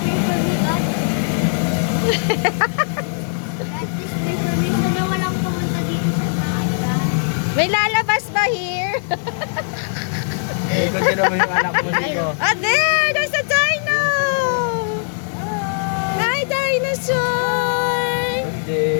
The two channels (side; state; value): right; silent; digital silence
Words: May lalabas ba here? Ikot mo yung anak mo dito. Oh, there's a dino! Hi, dinosaur!